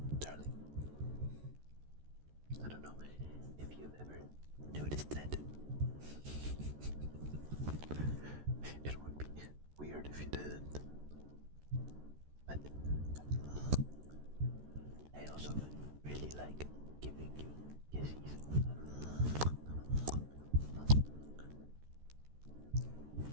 darling. I don't know if you've ever noticed that. It would be weird if you didn't. But I also really like giving you kisses.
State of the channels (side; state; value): left; late; 14 ms